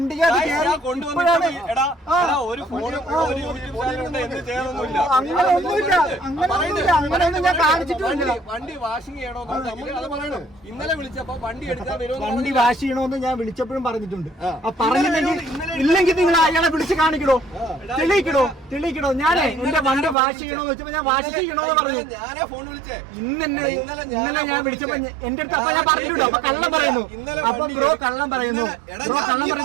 അങ്ങനെയൊന്നും ഞാൻ കാണിച്ചിട്ടില്ല. വണ്ടി വാഷിംഗ് ചെയ്യണോ ഇന്നലെ വിളിച്ചപ്പോ വണ്ടി എടുക്കാൻ വണ്ടി വാഷ് ചെയ്യണോന്ന് ഞാൻ വിളിച്ചപ്പോഴും പറഞ്ഞിട്ടുണ്ട്. ഇല്ലെങ്കിൽ നിങ്ങൾ അയാളെ വിളിച്ച് കാണിക്കണോ, തെളിയിക്കണോ. ഞാനേ എന്റെ വണ്ടി വാഷ് ചെയ്യണോന്ന് വെച്ചപ്പോ ഞാൻ വാഷ് ചെയ്യണോന്ന് പറഞ്ഞു. ഇന്നലെ ഞാൻ വിളിച്ചപ്പോ എന്റെ അടുത്ത് അപ്പൊ ഞാൻ പറഞ്ഞിട്ടുണ്ടോ അപ്പൊ കള്ളം പറയുന്നു. അപ്പൊ ബ്രോ കള്ളം പറയുന്നു.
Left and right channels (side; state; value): left; drops out; at 20.2 s